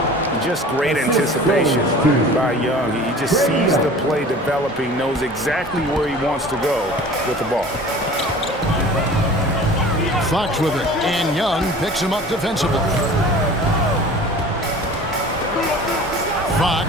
Just great anticipation by Young. He just sees the play developing, knows exactly where he wants to go with the ball. Fox with it, and Young picks him up defensively.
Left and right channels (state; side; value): normal; both; correlation 0.42